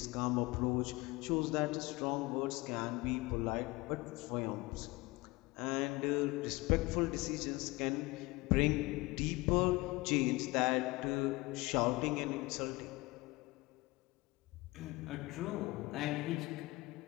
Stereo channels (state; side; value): quieter; right; 22.3 dB